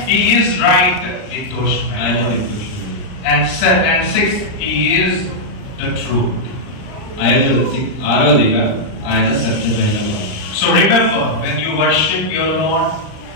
He is right with those men. And 6th, he is the truth. ఆరోదిగా ఆయన సత్యమైన వాడు. So remember, when you worship your Lord,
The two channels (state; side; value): late; right; 39 ms